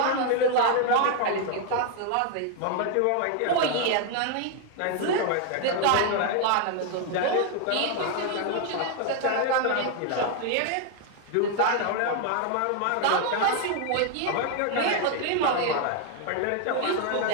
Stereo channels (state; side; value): different; both; correlation 0.00